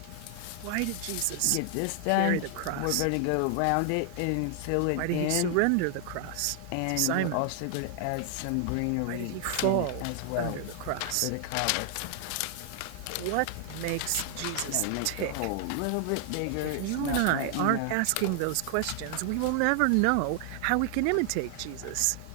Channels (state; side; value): different; both; correlation 0.00